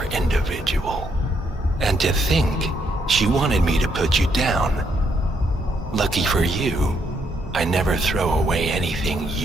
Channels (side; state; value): both; normal; correlation 0.74